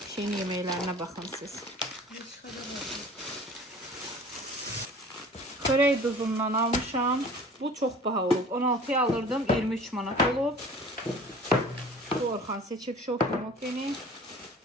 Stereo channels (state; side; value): normal; both; correlation 0.45